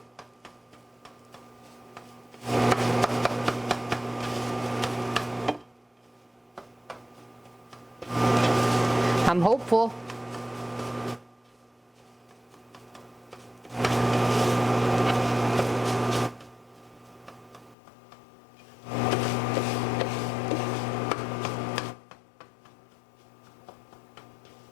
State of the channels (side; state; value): right; drops out; at 17.8 s